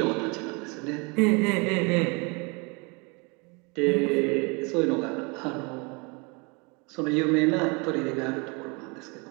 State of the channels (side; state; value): left; quieter; 30.1 dB